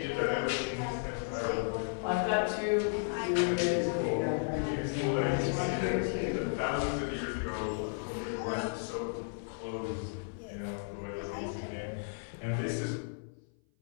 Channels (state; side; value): silent; right; 55 dB below the other